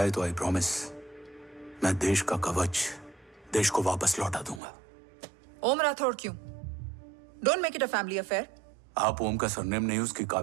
तो आई प्रॉमिस मैं देश का कवच देश को वापस लौटा दूंगा। ओम राठौड़ क्यों? Don't make it a family affair. आप ओम का सरनेम नहीं, उसकी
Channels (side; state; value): left; drops out; at 4.6 s